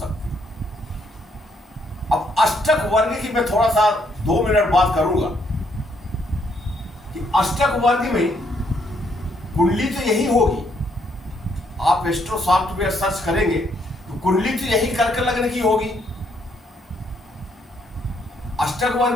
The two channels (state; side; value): normal; both; correlation 0.71